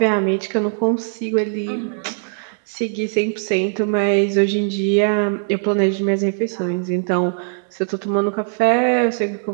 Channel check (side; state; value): left; silent; digital silence